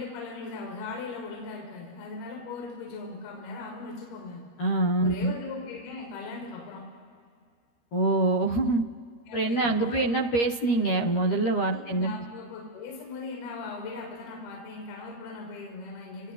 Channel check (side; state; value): right; late; 13 ms